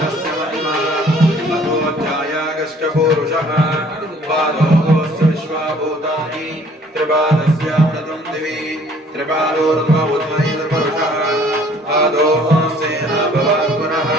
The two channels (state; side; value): normal; both; correlation 0.57